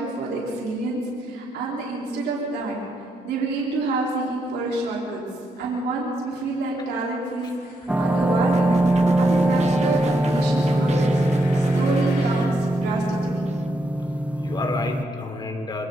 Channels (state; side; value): normal; both; correlation 0.79